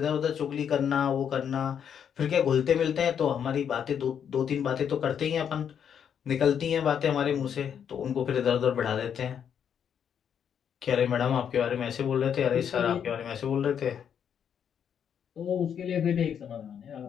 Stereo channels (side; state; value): right; quieter; 8.2 dB